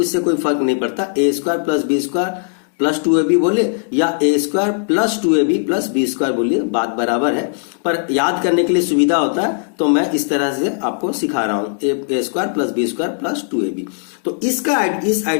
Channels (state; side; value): silent; right; digital silence